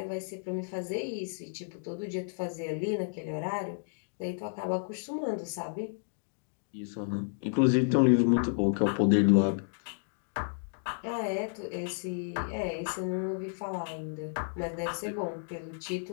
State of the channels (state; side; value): silent; right; digital silence